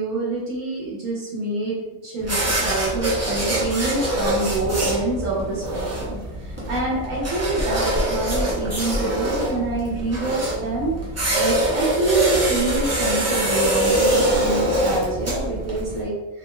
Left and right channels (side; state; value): both; normal; correlation 0.10